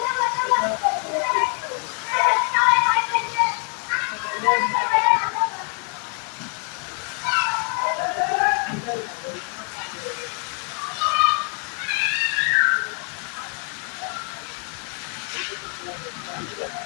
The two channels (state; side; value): quieter; right; 39.7 dB